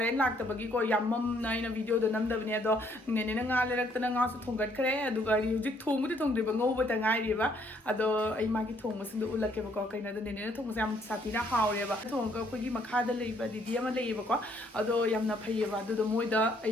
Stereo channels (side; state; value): both; normal; correlation 0.67